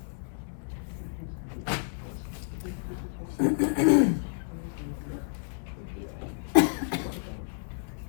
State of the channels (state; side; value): silent; right; 58 dB below the other